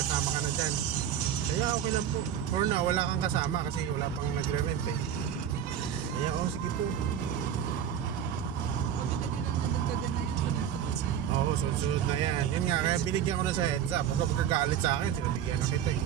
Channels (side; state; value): left; quieter; 9.4 dB